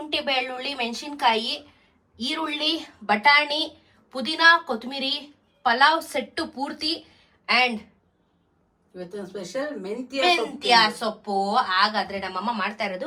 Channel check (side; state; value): both; identical; correlation 1.00